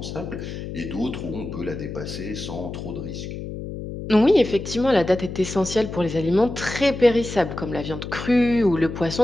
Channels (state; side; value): noise; left; hum, 8 dB below the sound